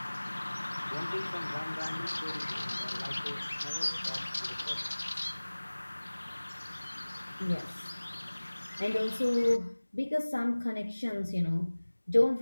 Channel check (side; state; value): both; inverted; correlation -1.00